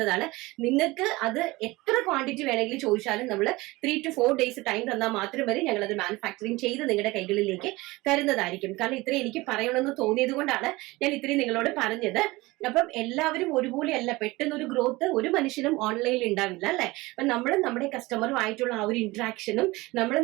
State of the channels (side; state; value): left; quieter; 21.2 dB